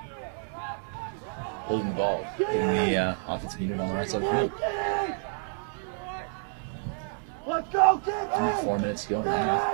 holding the ball. And the offensive unit on the right side. Let's go! Get in! 4 minutes to go.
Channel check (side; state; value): left; silent; 59 dB below the other